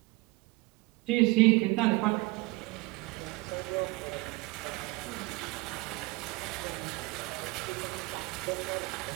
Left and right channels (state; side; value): quieter; left; 23.2 dB